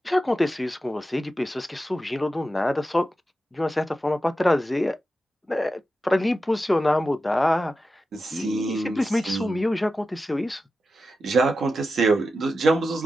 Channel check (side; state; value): both; normal; correlation 0.91